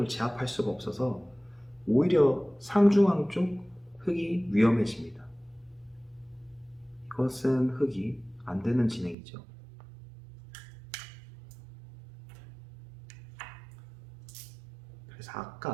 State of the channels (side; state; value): left; drops out; at 9.2 s